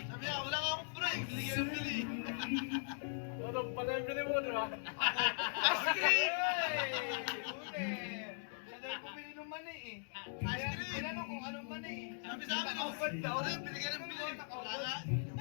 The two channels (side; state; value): right; silent; digital silence